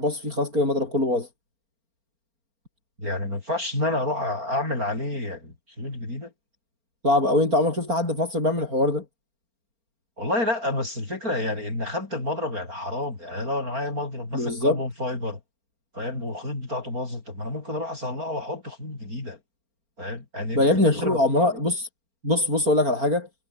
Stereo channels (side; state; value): left; late; 4.4 ms